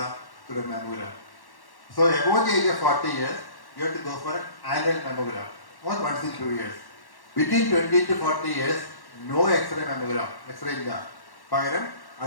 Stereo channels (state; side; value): late; right; 1.1 ms